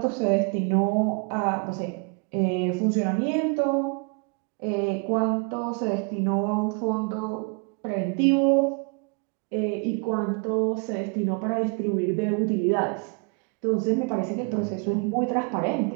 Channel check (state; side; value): quieter; left; 34.6 dB